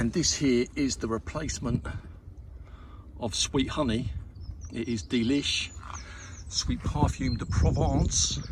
this here is the replacement of Sweet Honey. It is Delish Sweet Perfume de Provence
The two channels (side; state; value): both; identical; correlation 1.00